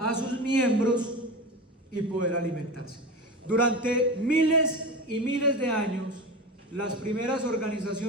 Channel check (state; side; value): normal; both; correlation 0.27